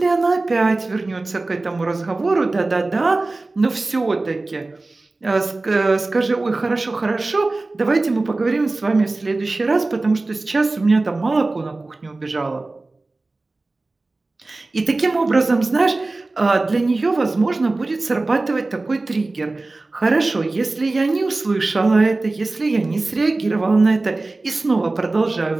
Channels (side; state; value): left; quieter; 3.2 dB